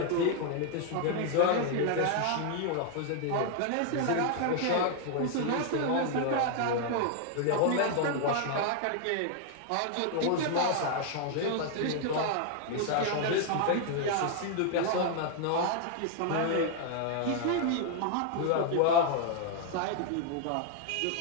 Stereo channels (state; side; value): different; both; correlation 0.00